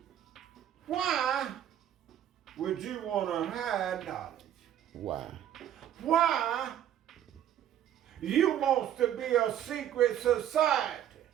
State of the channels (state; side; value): quieter; left; 10.8 dB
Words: Why would you want to hide knowledge? Why? Why you want to be a secret society?